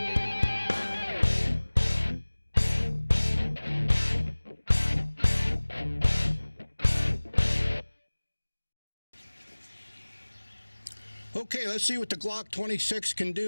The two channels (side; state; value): both; inverted; correlation -1.00